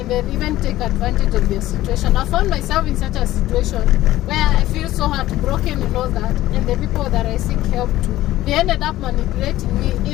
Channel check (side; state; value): right; quieter; 15.4 dB